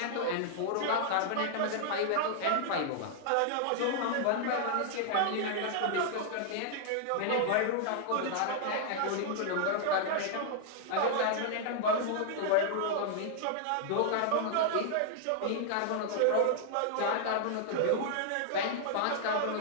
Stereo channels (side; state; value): both; different; correlation -0.01